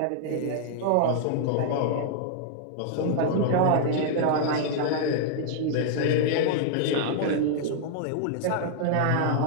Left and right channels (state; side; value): different; both; correlation -0.01